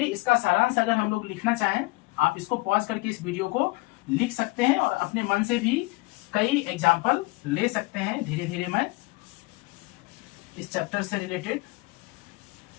इसका सारांश अगर हम लोग लिखना चाहें, आप इसको पॉज करके इस वीडियो को लिख सकते हैं और अपने मन से भी कई एग्जाम्पल ले सकते हैं। धीरे धीरे मैं इस चैप्टर से रिलेटेड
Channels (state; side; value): quieter; right; 23.6 dB